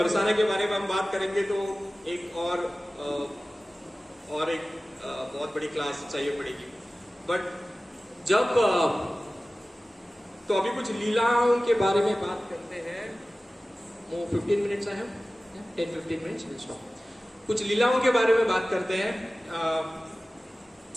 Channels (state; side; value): normal; both; correlation 0.97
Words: के बारे में हम बात करेंगे तो एक और एक बहुत बड़ी क्लास चाहिए पड़ेगी। बट जब तो अभी कुछ लीलाओं के बारे में बात करते हैं। वो 15 मिनट्स है, 10-15 मिनट्स। कुछ लीलाओं के बारे में बात करते हैं